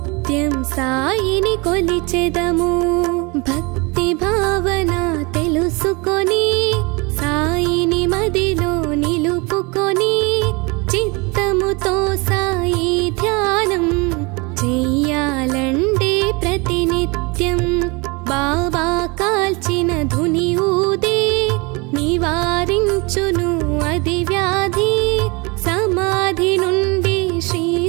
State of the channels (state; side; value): quieter; left; 27.8 dB